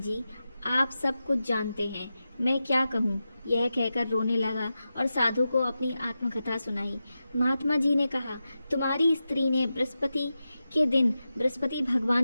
आप सब कुछ जानते हैं, मैं क्या कहूँ। यह कहकर रोने लगा और साधु को अपनी आत्मकथा सुनाई। महात्मा जी ने कहा, तुम्हारी स्त्री ने बृहस्पति के दिन बृहस्पति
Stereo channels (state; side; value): inverted; both; correlation -0.91